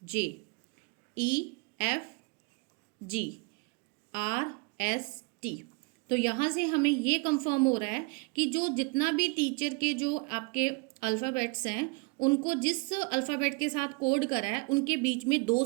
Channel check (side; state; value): left; quieter; 30.6 dB